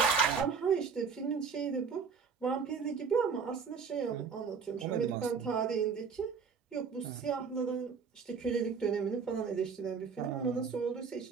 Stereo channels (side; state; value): left; quieter; 5.8 dB